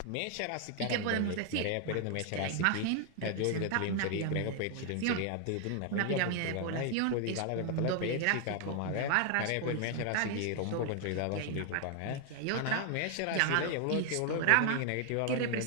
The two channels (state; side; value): different; both; correlation 0.00